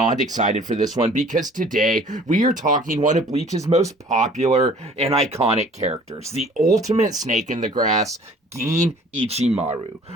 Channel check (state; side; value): normal; both; correlation 0.51